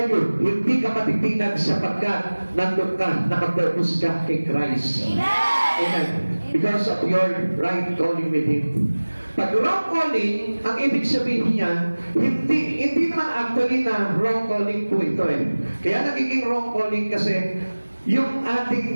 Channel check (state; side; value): inverted; both; correlation -1.00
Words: you, hindi ka matitinag sapagkat nandun ka, nakapurpose ka kay Christ. Amen. Because of your right calling with Him. Pag wrong calling, ang ibig sabihin niya, hindi naman actually na wrong calling po ito eh. Kaya nagiging wrong calling kasi yung